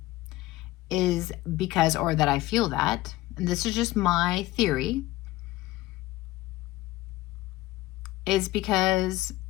is because, or that I feel that, and this is just my theory, is because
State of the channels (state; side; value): quieter; right; 17.6 dB